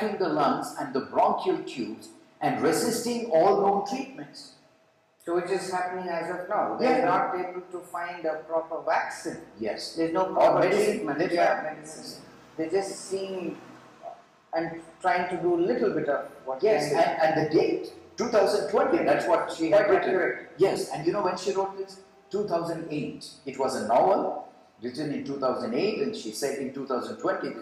the lungs and the bronchial tubes and resisting all known treatments. So which is happening as of now. Yeah. They're not able to find a proper vaccine. Yes. There's no proper medicine. treatment. Medicine. They're just seeing and trying to do a little bit of what Yes, can be. and the date, 2020, that's what she had Quite written. accurate. Yes, and you know when she wrote this? 2008. It was a novel written in 2008, and she said in 2020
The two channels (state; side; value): identical; both; correlation 1.00